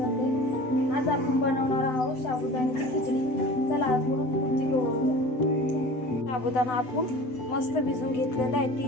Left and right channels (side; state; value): right; late; 7.9 ms